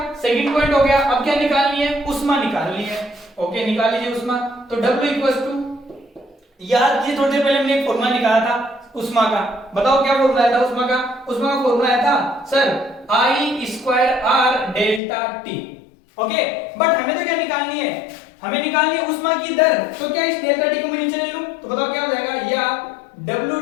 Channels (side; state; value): right; drops out; at 15.0 s